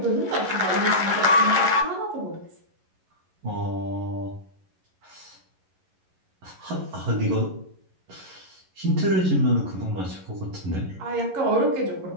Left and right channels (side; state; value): left; late; 11 ms